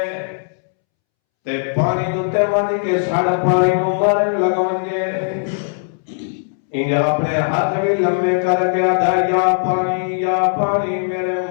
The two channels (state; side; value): silent; right; 67 dB below the other